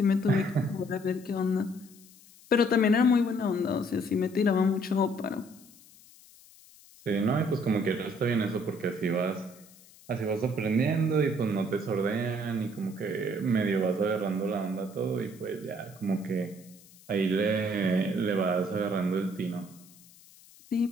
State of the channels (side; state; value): left; noise; hiss, 24 dB below the sound